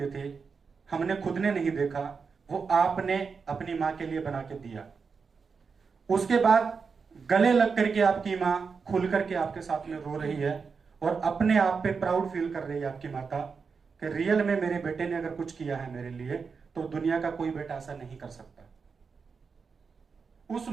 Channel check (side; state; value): left; quieter; 5.3 dB